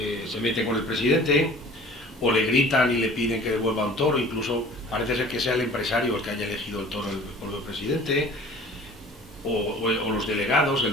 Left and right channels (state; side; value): normal; both; correlation 0.46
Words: meten con el presidente, o le gritan y le piden que devuelva un toro, incluso parece ser que sea el empresario el que haya elegido el toro por el presidente, o los delegados, el